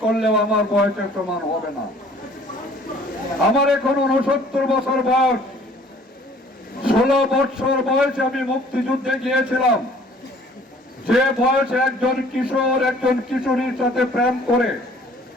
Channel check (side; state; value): both; normal; correlation 0.54